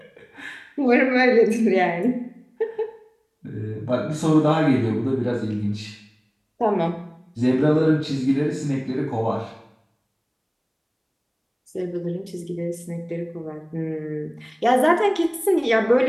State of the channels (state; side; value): identical; both; correlation 1.00